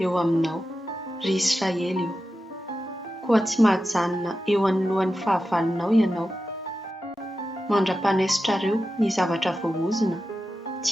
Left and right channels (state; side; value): normal; both; correlation 0.91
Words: eo aminao, ry Israely io. Koa tsy mahajanona eo anoloan'ny fahavalonao ianao. Mandra-panesotrareo ny zavatra voahozona,